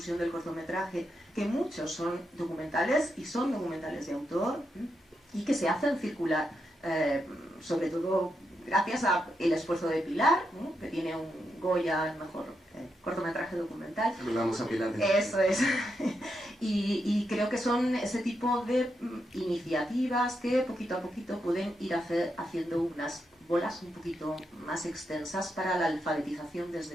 del cortometraje, que muchos son documentales y son documentales de autor y que se hacen circular, sobre todo gracias al esfuerzo de Pilar, que tiene un Goya, el mejor cortometraje documental. Vamos a Pilar. Eso es. Y creo que son ese tipo de iniciativas que poquito a poquito pueden ir haciendo unas bolas un poquito más extensas para la alfabetización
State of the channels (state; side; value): normal; both; correlation 0.83